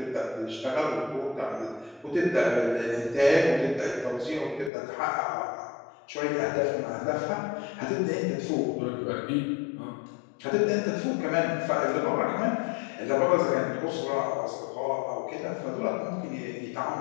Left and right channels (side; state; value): right; drops out; at 4.7 s